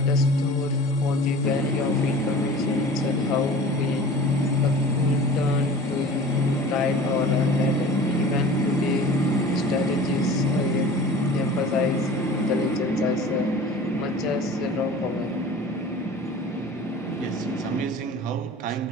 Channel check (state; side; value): normal; both; correlation 0.41